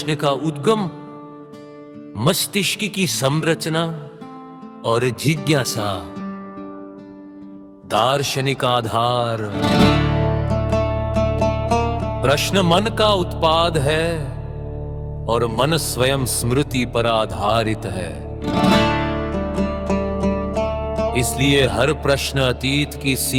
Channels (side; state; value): both; identical; correlation 1.00